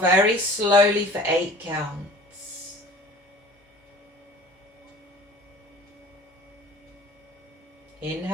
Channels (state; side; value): normal; both; correlation 0.45